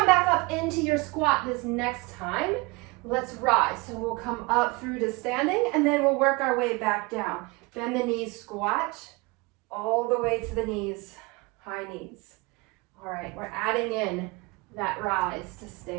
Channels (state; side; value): quieter; left; 25.7 dB